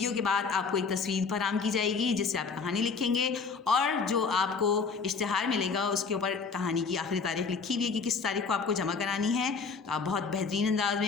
کے بعد آپ کو ایک تصویر فراہم کی جائے گی جس سے آپ کہانی لکھیں گے, اور جو آپ کو اشتہار ملے گا اس کے اوپر کہانی کی آخری تاریخ لکھی ہوئی ہے کہ کس تاریخ کو آپ کو جمع کرانی ہے. تو آپ بہت بہترین انداز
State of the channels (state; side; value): quieter; right; 5.1 dB